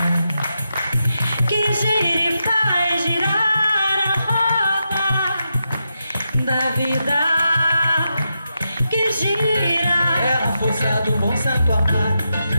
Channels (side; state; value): both; inverted; correlation -0.86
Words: Que gira e faz girar a roda da vida, que gira. É a força do bom santo amado,